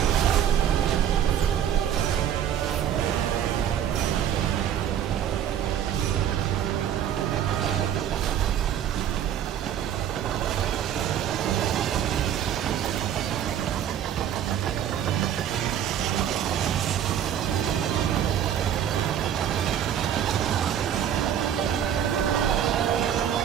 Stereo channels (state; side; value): quieter; left; 9.8 dB